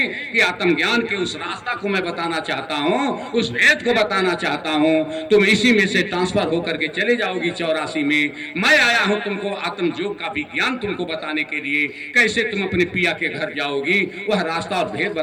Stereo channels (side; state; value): both; identical; correlation 1.00